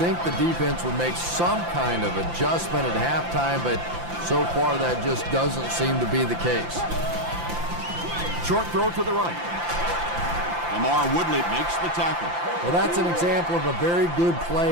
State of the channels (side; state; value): left; late; 5.8 ms